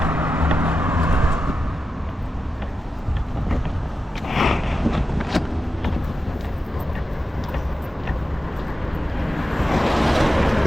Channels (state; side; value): normal; both; correlation 0.91